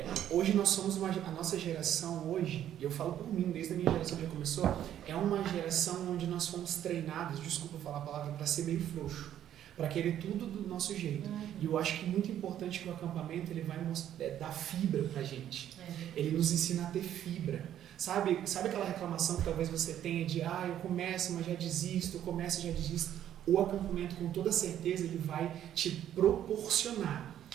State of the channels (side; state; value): left; quieter; 10.9 dB